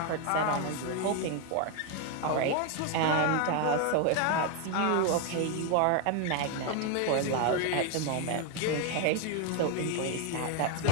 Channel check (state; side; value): different; both; correlation 0.01